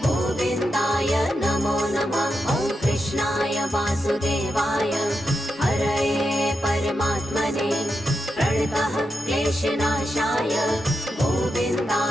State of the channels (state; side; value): normal; both; correlation 0.87